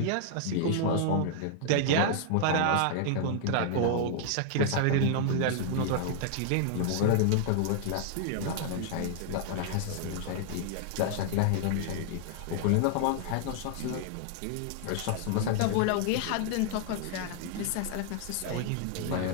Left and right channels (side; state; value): both; different; correlation -0.01